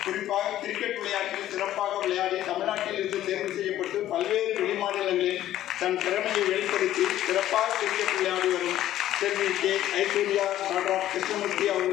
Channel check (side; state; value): right; quieter; 12.9 dB